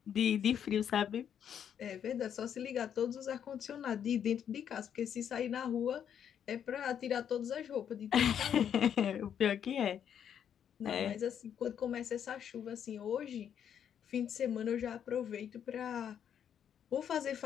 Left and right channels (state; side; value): quieter; right; 8.8 dB